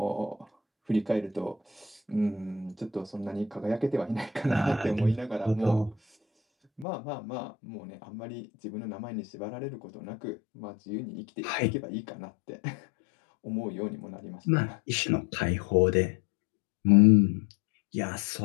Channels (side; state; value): right; drops out; at 6.9 s